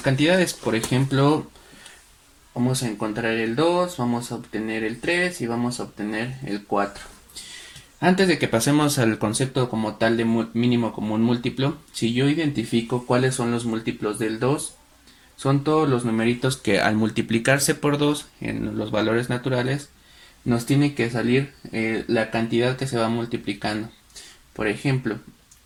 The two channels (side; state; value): both; identical; correlation 1.00